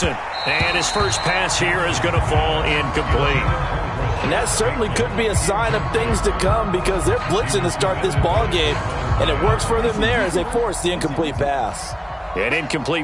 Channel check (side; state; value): both; identical; correlation 1.00